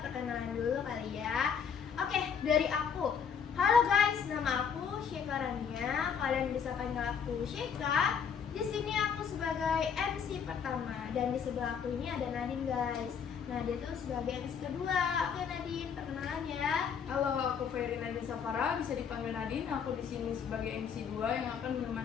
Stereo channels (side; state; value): right; quieter; 7.0 dB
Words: dulu kali ya. Oke, dari aku. Halo guys, nama aku Syeka Rania. Kalian bisa panggil aku Syeka. Di sini aku sebagai MC pertama dan di sebelah aku ini ada Nadine guys. Nah, dia tuh sebagai MC kedua. Oke Nadine, perkenalan ya. Halo, aku Ferry Nadine Safara, bisa dipanggil Nadine. Aku di sini sebagai MC 2 yang akan